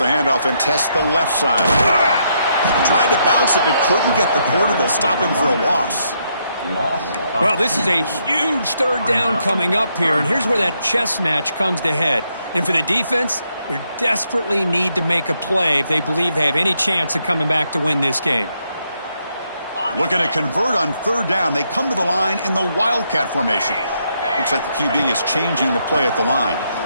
handoff and tests the left side. Tried to bounce it, but couldn't get the quarter to stop him for a loss. Well, this is a huge 3rd down coming up here, and here's where that chess match comes to head. And for the defense, they desperately need to make a play if they believe they have any chance of coming back to win this game. Looking to convert on 3rd down. They come to the line in the Wildcat formation. Looks like the QB is changing the play at the line.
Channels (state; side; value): inverted; both; correlation -0.77